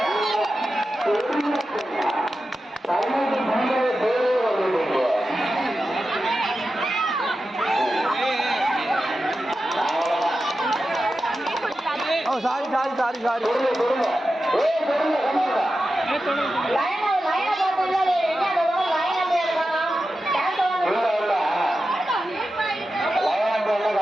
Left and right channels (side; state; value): both; normal; correlation 0.92